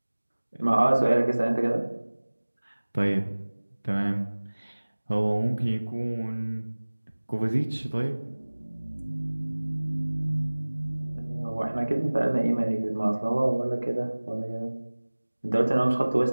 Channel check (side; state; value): both; inverted; correlation -1.00